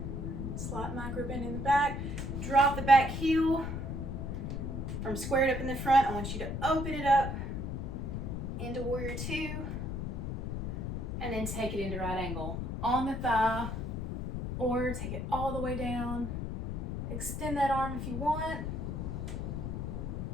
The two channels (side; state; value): left; noise; rumble, 4 dB below the sound